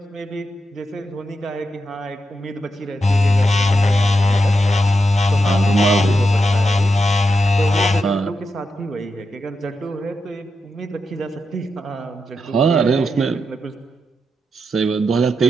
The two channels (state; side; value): normal; both; correlation 0.86